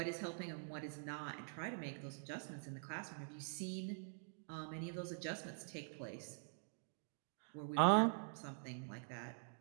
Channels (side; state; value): left; silent; digital silence